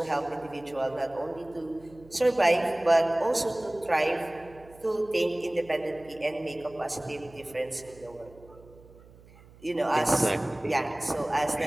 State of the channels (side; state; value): right; noise; hum, 23 dB below the sound